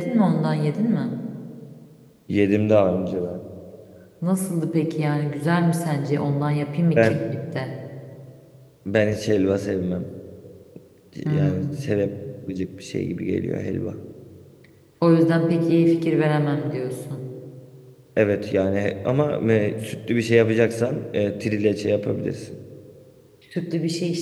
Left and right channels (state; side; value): identical; both; correlation 1.00